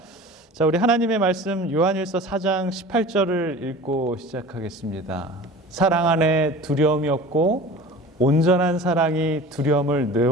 자, 우리 하나님의 말씀 요한일서 4장 18절을 읽고 시작하겠습니다. 사랑 안에 두려움이 없고 온전한 사랑이 두려움을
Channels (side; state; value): both; normal; correlation 0.39